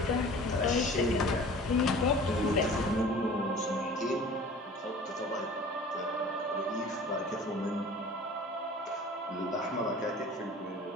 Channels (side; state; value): both; normal; correlation 0.44